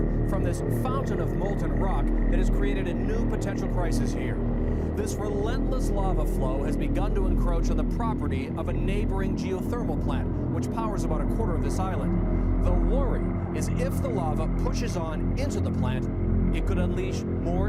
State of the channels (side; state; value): both; identical; correlation 1.00